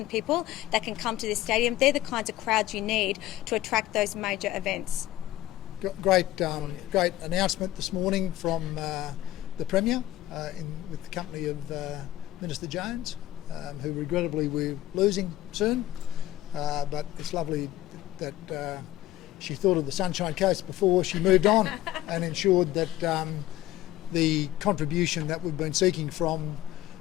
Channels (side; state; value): right; quieter; 14.7 dB